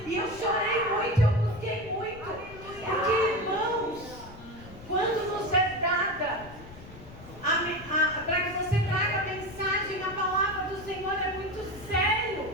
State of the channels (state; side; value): noise; left; rumble, 17 dB below the sound